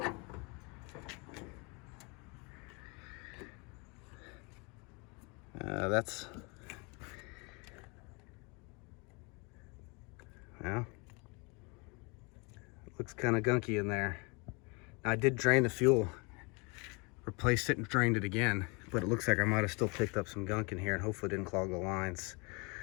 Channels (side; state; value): right; quieter; 30.1 dB